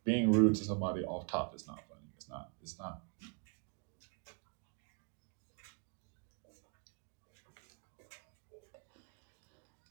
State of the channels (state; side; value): quieter; left; 36.7 dB